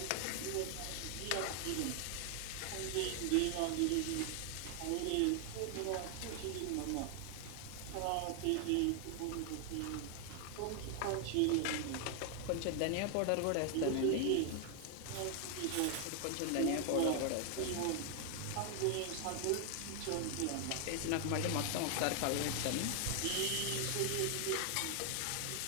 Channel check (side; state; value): both; different; correlation 0.00